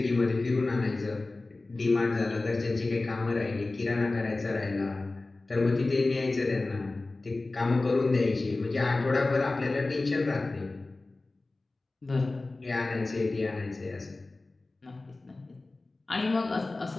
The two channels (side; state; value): right; quieter; 3.2 dB